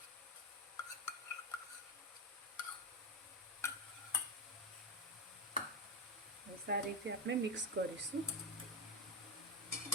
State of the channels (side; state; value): both; normal; correlation 0.12